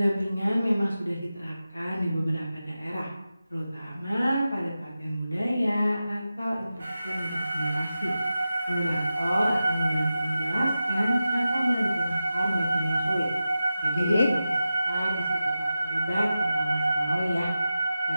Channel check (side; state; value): both; inverted; correlation -0.93